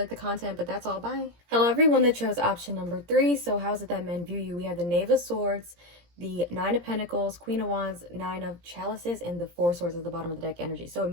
the content. But that's all. Bye. Hello everyone that chose option number 3. So how is it that men view you? We have the Knave of Swords, the 9 of Pentacles, Queen of Wands, 9 of Chalices, and the 4 Swords at the bottom of the deck energy. So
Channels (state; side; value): late; left; 17 ms